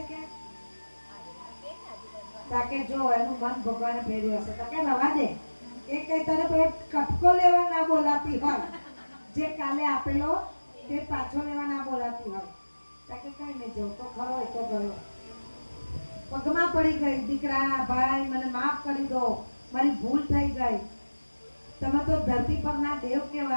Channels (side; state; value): both; inverted; correlation -1.00